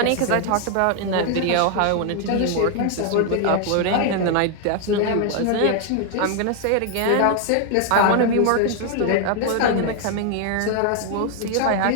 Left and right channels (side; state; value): both; different; correlation 0.00